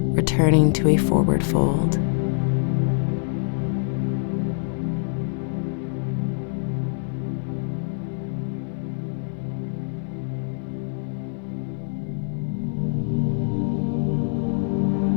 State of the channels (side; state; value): right; silent; digital silence